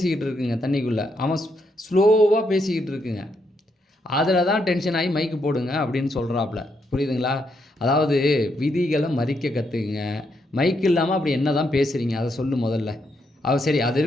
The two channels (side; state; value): both; normal; correlation 0.78